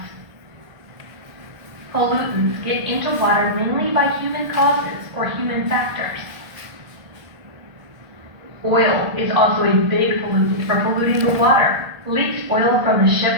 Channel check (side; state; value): left; late; 1.4 ms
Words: Pollutants get into water mainly by human causes or human factors. Oil is also a big pollutant for polluting the water. Leaked oil from the ship